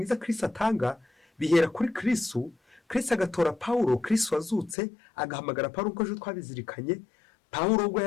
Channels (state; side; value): drops out; right; at 4.8 s